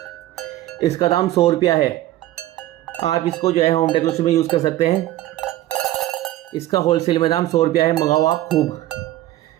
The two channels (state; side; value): quieter; left; 15.0 dB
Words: इसका दाम 100 रुपया है। आप इसको जो है होम डेकोरेशन में यूज़ कर सकते हैं। इसका होलसेल में दाम 100 रुपया है। मंगाओ आप खूब।